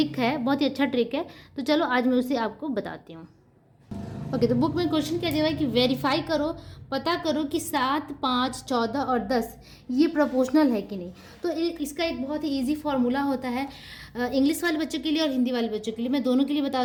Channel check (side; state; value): both; identical; correlation 1.00